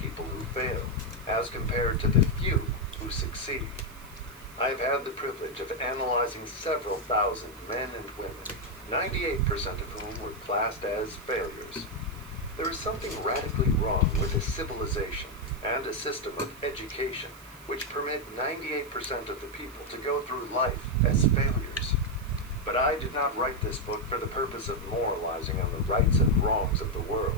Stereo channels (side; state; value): right; noise; hiss, 22 dB below the sound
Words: who fail, as compared to the few who succeed. I have had the privilege of analyzing several thousand men and women, 98% of whom were classed as failures. There is something radically wrong with a civilization and a system of education which permit 98% of the people to go through life as failures. But I did not write this book for the purpose of moralizing on the rights and wrongs of the